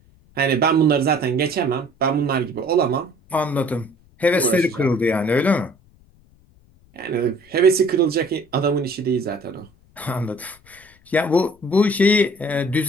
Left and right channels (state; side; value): noise; left; rumble, 30 dB below the sound